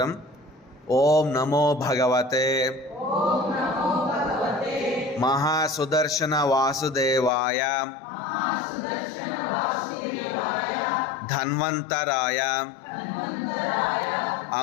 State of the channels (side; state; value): right; drops out; at 7.3 s